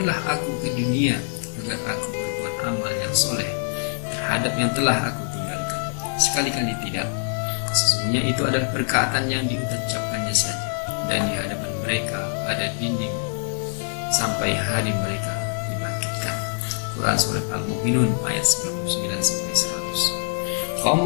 aku ke dunia agar aku berbuat amal yang soleh terhadap yang telah aku tinggalkan. Sekali-kali tidak. Sesungguhnya itu adalah perkataan yang diucapkannya saja, dan di hadapan mereka ada dinding sampai hari mereka dibangkitkan. Quran Surat Al-Mu'minun ayat 99-100.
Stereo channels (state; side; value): silent; right; digital silence